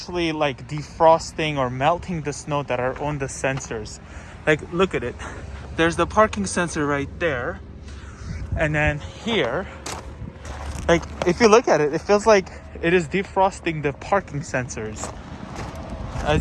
like defrosting or melting the snow that are on the sensors? Like, look at it. There's the parking sensor right there. And then here, like if you look at it, it feels like it is defrosting the parking sensors,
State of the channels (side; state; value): both; identical; correlation 1.00